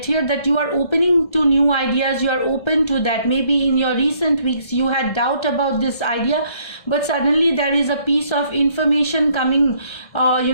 here, that you are opening to new ideas. You are open to that. Maybe in your recent weeks you had doubt about this idea, but suddenly there is a piece of information coming,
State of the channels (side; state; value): right; late; 1.7 ms